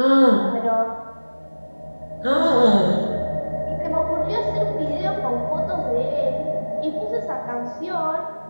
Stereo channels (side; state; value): both; inverted; correlation -1.00